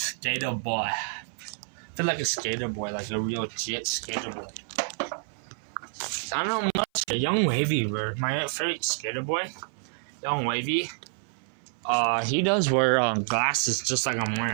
boy. I feel like a skater boy, like a real jet skater boy. I don't know much. Young Wavy, my favorite skater boy, Young Wavy. He does wear glasses just like I'm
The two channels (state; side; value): silent; left; 56 dB below the other